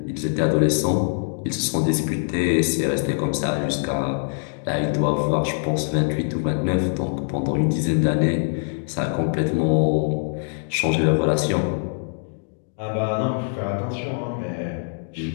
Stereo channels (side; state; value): right; silent; 63 dB below the other